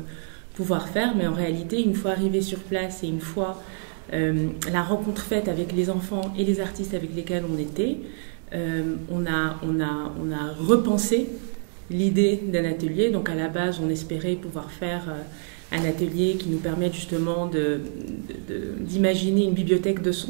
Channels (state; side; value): silent; left; 61 dB below the other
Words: faire, mais en réalité, une fois arrivé sur place et une fois la rencontre faite avec les enfants et les artistes avec lesquels on était, on a repensé l'idée d'un atelier. Donc à la base, on espérait pouvoir faire un atelier qui nous permette justement d'imaginer une bibliothèque de